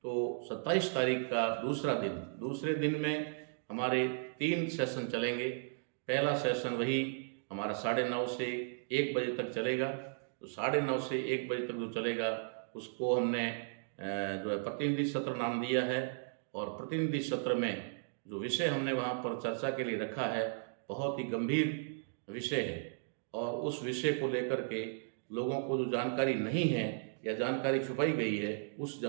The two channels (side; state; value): left; silent; digital silence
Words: तो 27 तारीख का दूसरे दिन में हमारे 3 सेशन चलेंगे। पहला सेशन वही हमारा 9:30 से 1 बजे तक चलेगा। तो 9:30 से 1 बजे तक जो चलेगा उसको हमने जो है प्रतिनिधि सत्र नाम दिया है। और प्रतिनिधि सत्र में जो विषय हमने वहाँ पर चर्चा के लिए रखा है, बहुत ही गंभीर विषय है। और उस विषय को लेकर के लोगों को जो जानकारी नहीं है या जानकारी छुपाई गई है, उस